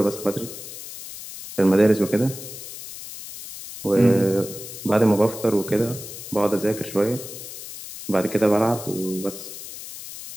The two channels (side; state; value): left; noise; hiss, 12 dB below the sound